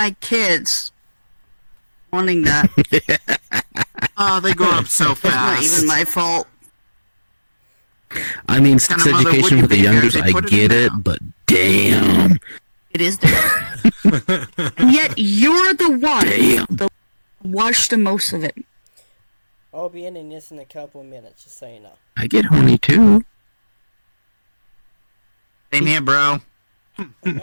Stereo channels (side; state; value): both; inverted; correlation -1.00